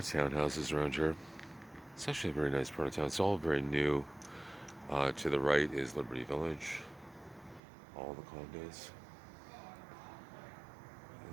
townhouses around here. It's actually a very nice part of town. It's all very new. To the right is Liberty Village, all the condos,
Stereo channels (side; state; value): left; drops out; at 7.6 s